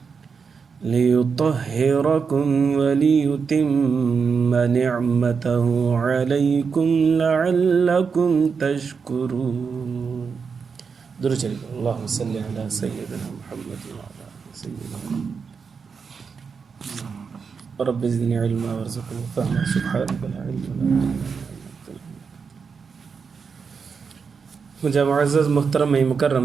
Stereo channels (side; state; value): left; quieter; 5.7 dB